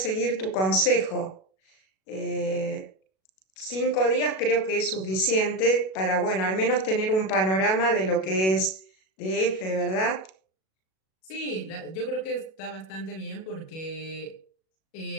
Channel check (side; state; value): right; late; 37 ms